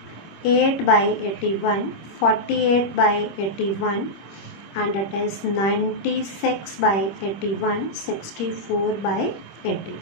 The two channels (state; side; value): late; right; 26 ms